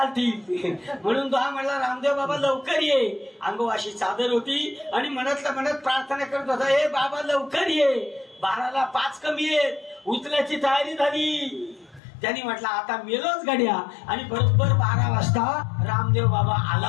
म्हणून तो हा म्हटला रामदेव बाबा लवकर ये. अंगवाशी चादर होती आणि मनातल्या मनात प्रार्थना करत होता, हे बाबा लवकर ये, 12ला 5 कमी आहेत, उचल्याची तयारी झाली. त्यांनी म्हटलं आता मेलोच गड्या. आणि बरोबर 12 वाजता रामदेव बाबा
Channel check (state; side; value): drops out; right; at 12.0 s